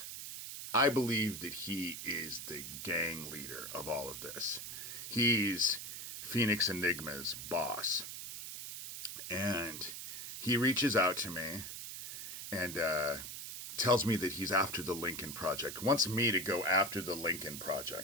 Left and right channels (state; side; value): noise; right; hiss, 8 dB below the sound